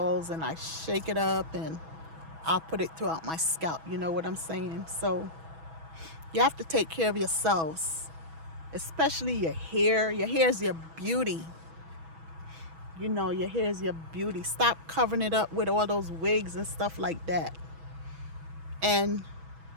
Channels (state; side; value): late; left; 6.1 ms